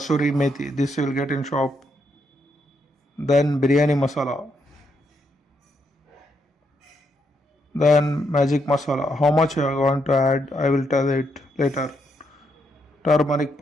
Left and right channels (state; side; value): normal; both; correlation 0.78